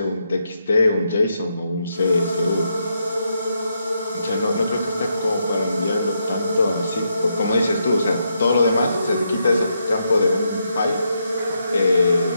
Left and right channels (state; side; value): inverted; both; correlation -0.80